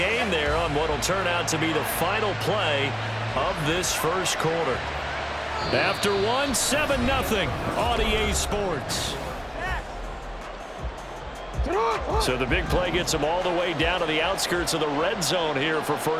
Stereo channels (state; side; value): identical; both; correlation 1.00